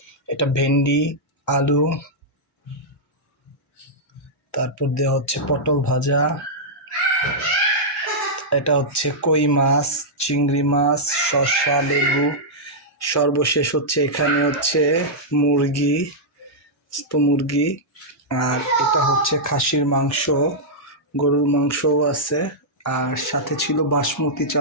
এটা ভেন্ডি, আলু, তারপর দেওয়া হচ্ছে পটল ভাজা, এটা হচ্ছে কই মাছ, চিংড়ি মাছ, শসা, লেবু, সর্বশেষ হচ্ছে এখানে হচ্ছে মুরগি, মুরগি, আর এটা হচ্ছে খাসির মাংস, গরুর মাংসও আছে, আর সাথে ছিল বাসমতি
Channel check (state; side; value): normal; both; correlation -0.09